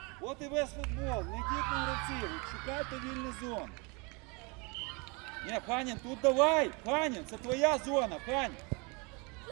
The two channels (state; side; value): quieter; left; 29.9 dB